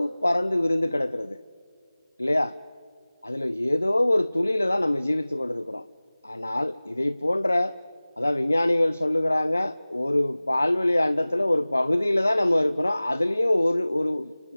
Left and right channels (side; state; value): both; inverted; correlation -0.99